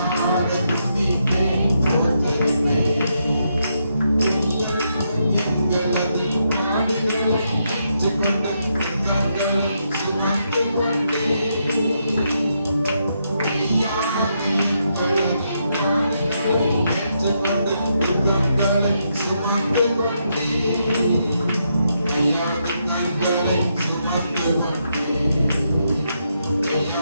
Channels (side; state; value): both; inverted; correlation -0.79